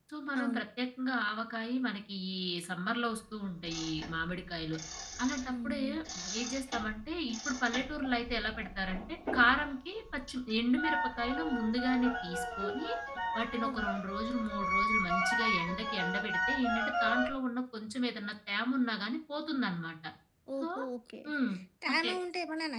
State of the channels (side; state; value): both; identical; correlation 1.00